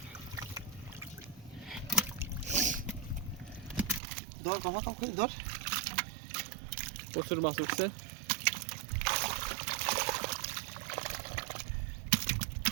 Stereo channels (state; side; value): drops out; left; at 4.0 s